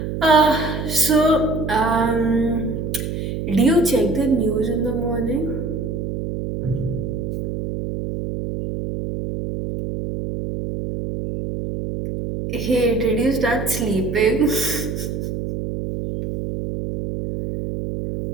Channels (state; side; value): noise; right; hum, 4 dB below the sound